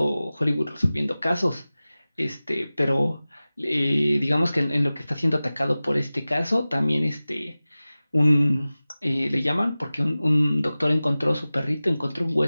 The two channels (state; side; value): inverted; both; correlation -0.97